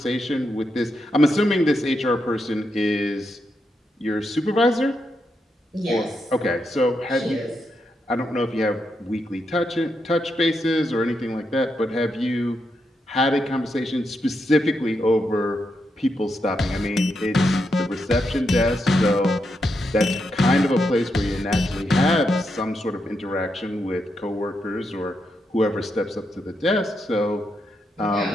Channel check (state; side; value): normal; both; correlation 0.83